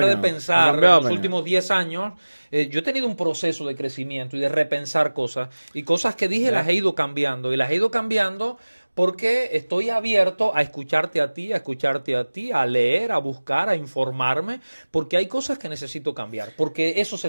de pensar en los últimos 10 años. Yo he tenido un proceso de crecimiento y de repensar cosas, y cosas que dije las he ido cambiando, y las he ido cambiando porque estoy abierto a escucharte a ti, a leer, a buscar, a informarme, porque hay cosas que necesito cambiar, porque eso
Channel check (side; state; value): both; inverted; correlation -1.00